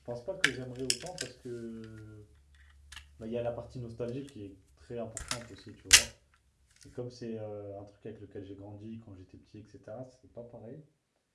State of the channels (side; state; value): both; identical; correlation 1.00